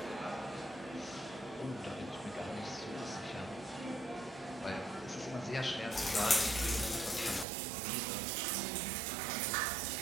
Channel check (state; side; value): drops out; left; at 7.5 s